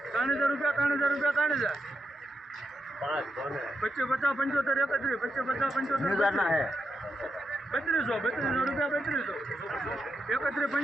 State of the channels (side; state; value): both; normal; correlation 0.85